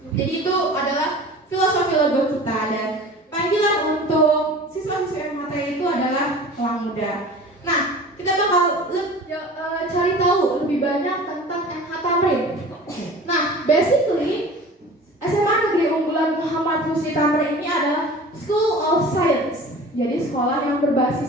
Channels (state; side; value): normal; both; correlation 0.40